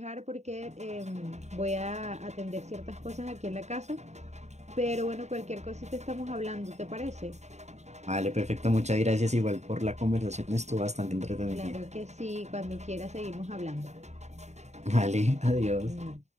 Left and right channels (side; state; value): left; late; 0.33 ms